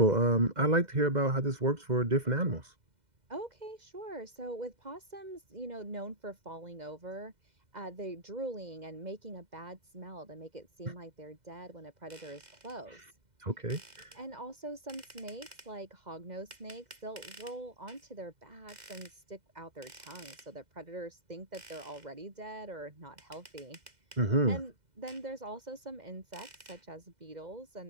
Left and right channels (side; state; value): left; late; 2.0 ms